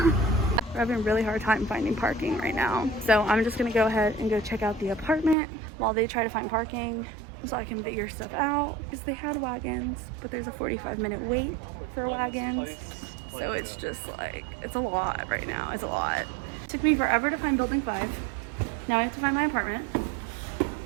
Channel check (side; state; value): left; drops out; at 5.4 s